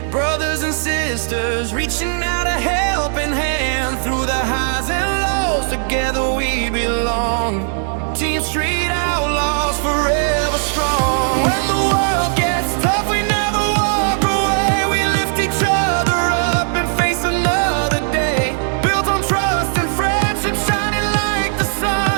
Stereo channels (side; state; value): left; silent; 55 dB below the other